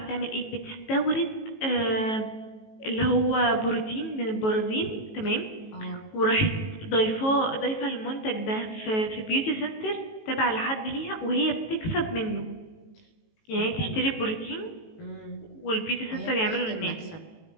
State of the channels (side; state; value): right; late; 18 ms